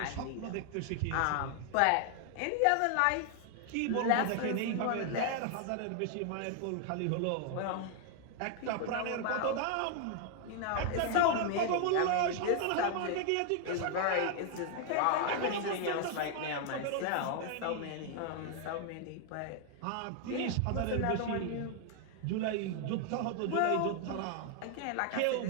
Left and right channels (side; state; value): both; different; correlation 0.00